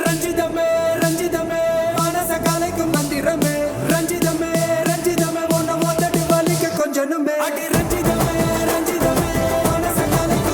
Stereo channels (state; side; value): identical; both; correlation 1.00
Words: ரஞ்சிதமே ரஞ்சிதமே மனச கலைக்கும் மந்திரமே ரஞ்சிதமே ரஞ்சிதமே உன்னை மொத்தடி வலிக்க கொஞ்சனுமே அடி ரஞ்சிதமே ரஞ்சிதமே மனச